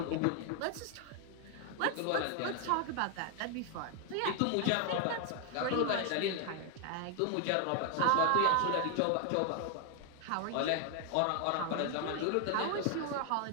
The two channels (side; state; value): both; different; correlation 0.01